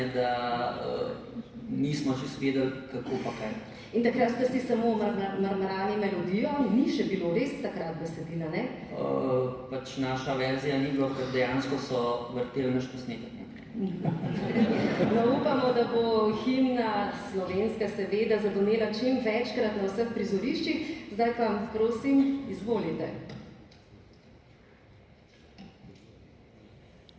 da nismo čisto vedeli, kako pa kaj. In takrat ste si samo marmarali melodijo, ni še bilo res takrat besedila, ne? Pač naša verzija ni bilo, ker dejansko so vrteli naš posnetek. No, upamo, da bo himna slovenska seveda zadonela čim večkrat na vseh prizoriščih. Zdaj pa, prosim, izvolite.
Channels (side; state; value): both; identical; correlation 1.00